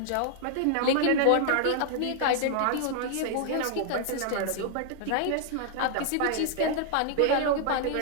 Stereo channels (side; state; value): both; different; correlation 0.00